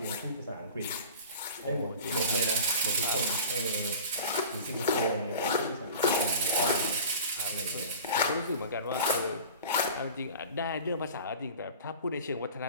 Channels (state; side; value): inverted; both; correlation -0.39